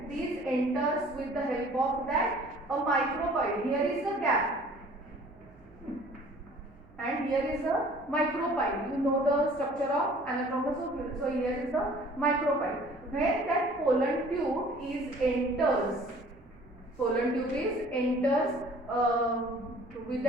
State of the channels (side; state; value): right; noise; hum, 26 dB below the sound